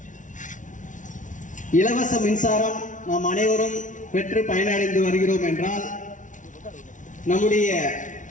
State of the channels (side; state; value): right; late; 0.37 ms